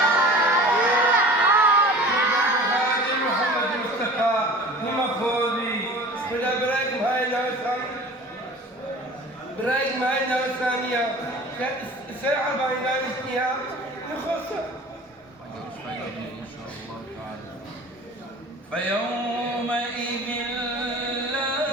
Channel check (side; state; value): both; normal; correlation 0.42